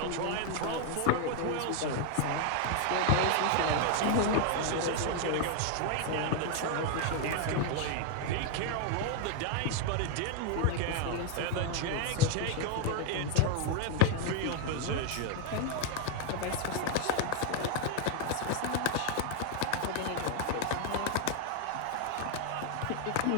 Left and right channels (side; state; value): both; different; correlation 0.00